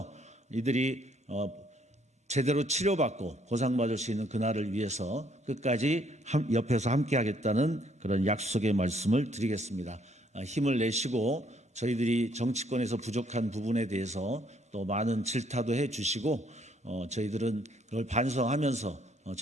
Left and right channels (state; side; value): normal; both; correlation 0.66